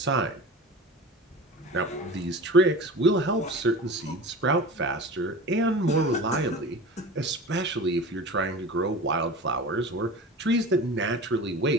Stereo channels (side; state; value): both; normal; correlation 0.34